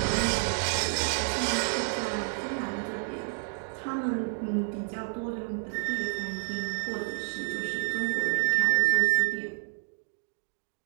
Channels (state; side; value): silent; left; digital silence